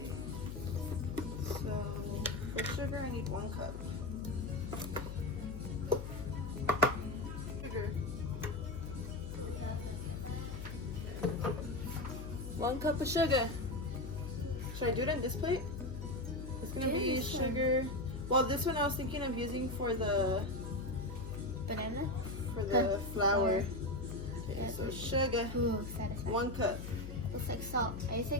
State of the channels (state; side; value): noise; left; hum, 8 dB below the sound